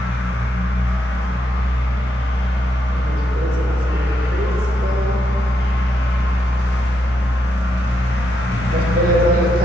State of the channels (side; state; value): both; normal; correlation 0.81